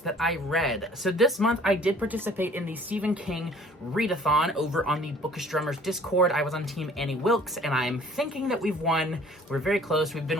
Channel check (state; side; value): normal; both; correlation 0.53